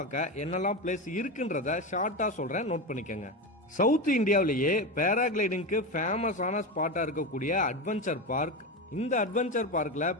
என்னெல்லாம் பிளேஸ் இருக்குன்றத ஷார்ட்டாக சொல்கிறேன், நோட் பண்ணிக்கோங்க. சவுத் இந்தியாவிலேயே பேராகிளைடிங்க்கு ஃபேமஸான ஸ்பாட்டாக இருக்கக்கூடிய அட்வென்ச்சர் பார்க். இந்த அட்வென்ச்சர் பார்க்கில்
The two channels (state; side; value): normal; both; correlation 0.18